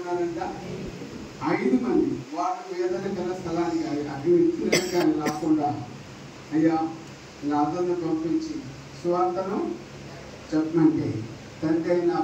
5 మంది. వాళ్ళు ఏదైనా గల స్థలానికి అటు ఇచ్చిన కానీ రాకుండా, అయ్యా లాజరును పంపించి సువార్తను చెప్పమంటే, తండ్రి అయిన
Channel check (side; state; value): both; identical; correlation 1.00